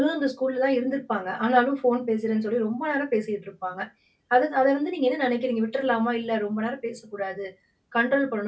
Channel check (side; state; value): both; identical; correlation 1.00